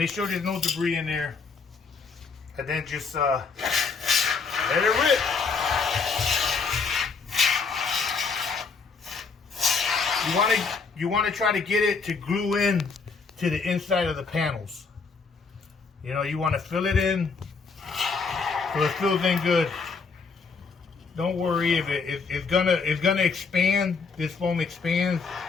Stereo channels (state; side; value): quieter; right; 4.9 dB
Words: sure there's no debris in there, and then just let it rip. You want to try to get it to glue in to the inside of the panels. You know, you want to fill it in so it fills in good. Don't worry if it's gonna expand. This foam expands